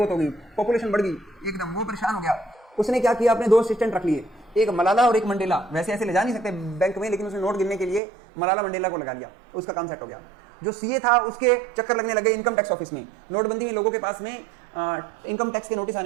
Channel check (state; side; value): drops out; left; at 8.0 s